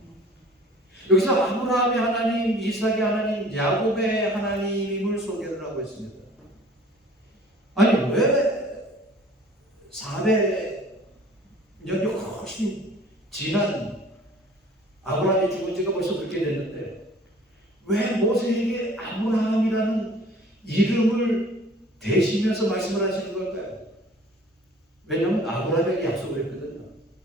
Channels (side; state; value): both; normal; correlation 0.50